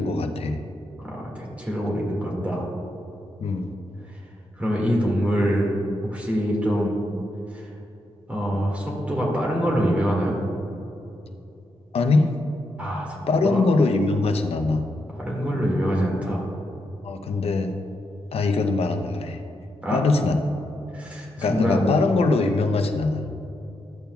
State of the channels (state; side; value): normal; both; correlation 0.82